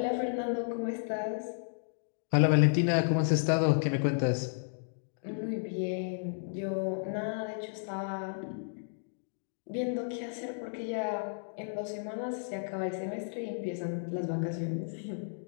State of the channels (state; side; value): silent; right; digital silence